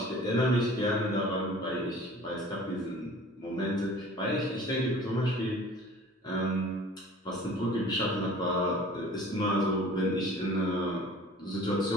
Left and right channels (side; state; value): both; normal; correlation 0.46